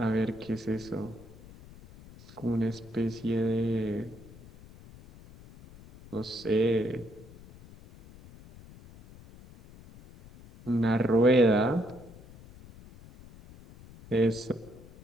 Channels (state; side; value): noise; left; rumble, 20 dB below the sound